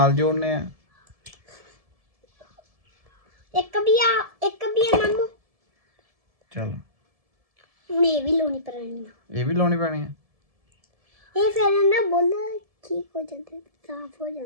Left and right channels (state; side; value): late; left; 1.7 ms